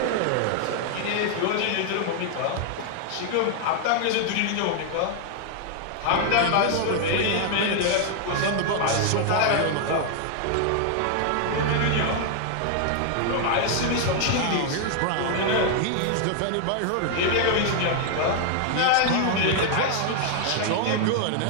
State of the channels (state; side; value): different; both; correlation 0.00